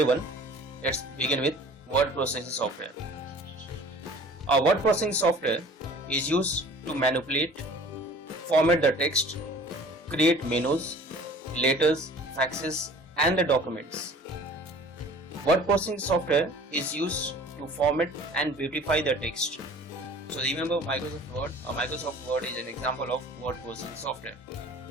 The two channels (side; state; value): both; normal; correlation 0.47